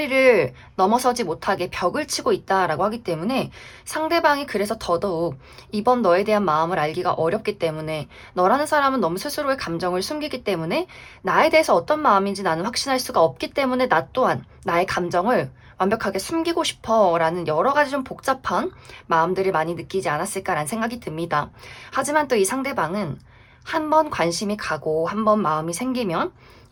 넘어서지 못하게 벽을 치고 있다라고 하기 때문에 상대방이 그래서 더더욱 이번 너에 대한 마음을 알기가 어렵기 때문에, 너라는 사람은 너무 스스로의 감정을 숨기기 때문에 나에 대해서 어떤 마음인지 나는 확신할 수가 없기 때문에 나 또한 나의 감정을 완벽하게 숨기고 싶어 라는 여러 가지 좀 복잡한 마음들을 많이 느끼지 않았을까라는 생각이 듭니다. 하지만 또 이 상대방은 한 번 관심이 가고 한 번 마음이 생기면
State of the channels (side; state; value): both; identical; correlation 1.00